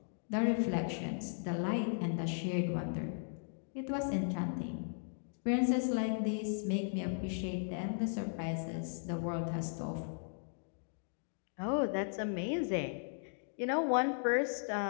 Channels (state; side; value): silent; right; digital silence